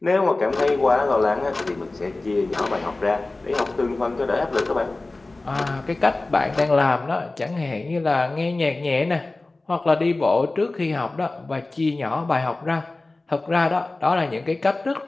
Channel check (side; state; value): right; quieter; 3.1 dB